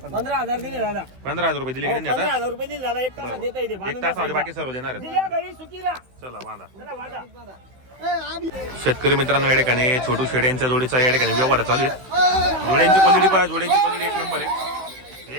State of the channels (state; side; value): late; left; 16 ms